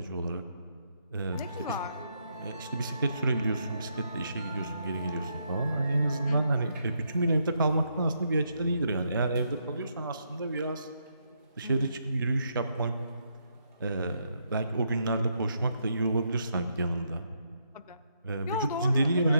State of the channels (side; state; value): both; inverted; correlation -0.77